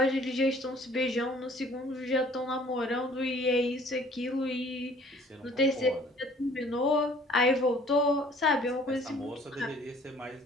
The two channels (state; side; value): normal; both; correlation 0.55